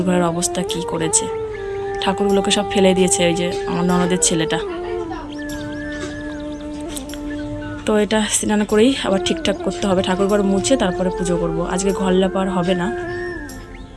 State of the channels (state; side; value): identical; both; correlation 1.00